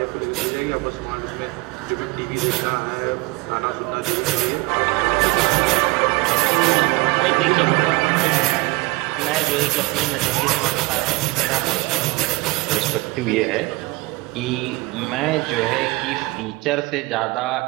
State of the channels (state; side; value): quieter; left; 23.4 dB